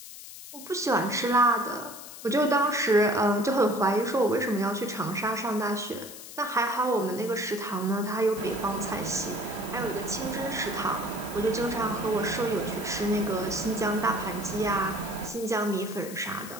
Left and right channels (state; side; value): noise; left; hiss, 14 dB below the sound